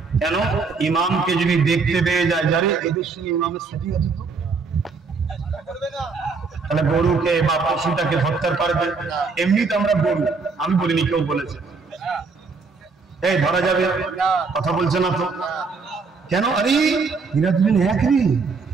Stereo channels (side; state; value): left; quieter; 4.6 dB